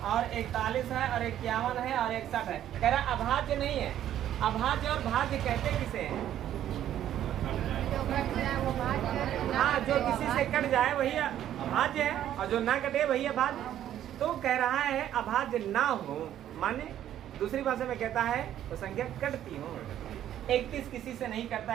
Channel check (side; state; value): left; quieter; 11.4 dB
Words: और 41 है और 51 है और 61 है। कह रहा है अभाज्य नहीं है। अभाज्य और भाज्य कहते किसे हैं? हाँ, जो किसी से कट जाए वही अभाज्य है और जो ना कटे वही अभाज्य। तो कह रहा है अभाज्य ना हो, माने दूसरी भाषा में कहता है तो संख्या कटती हो। 31 किसी से नहीं करता